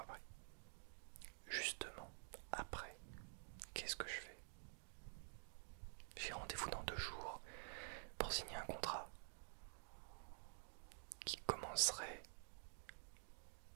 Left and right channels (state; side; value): silent; left; digital silence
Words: après. Justement, après, qu'est-ce que je fais? J'ai rendez-vous dans 2 jours pour signer un contrat qui commencerait